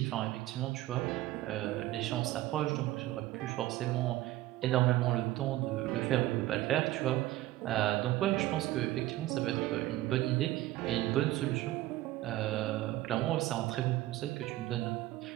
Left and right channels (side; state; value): left; quieter; 16.1 dB